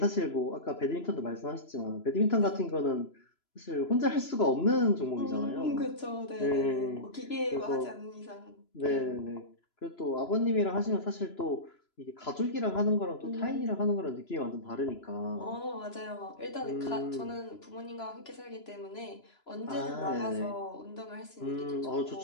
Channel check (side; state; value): right; late; 3.0 ms